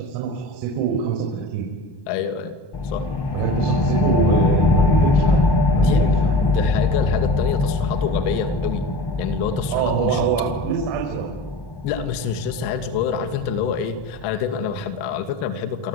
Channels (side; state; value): right; late; 1.1 ms